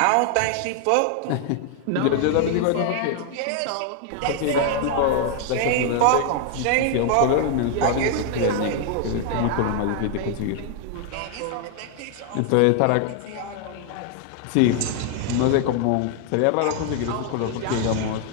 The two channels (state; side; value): different; both; correlation 0.00